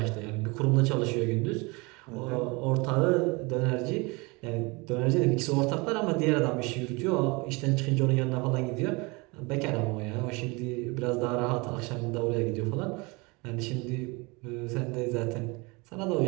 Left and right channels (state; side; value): quieter; left; 26.8 dB